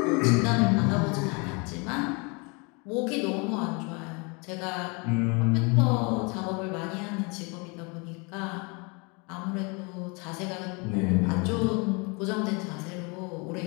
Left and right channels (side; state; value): right; quieter; 30.7 dB